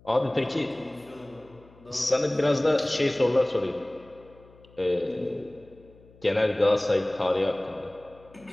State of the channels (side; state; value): left; noise; hum, 26 dB below the sound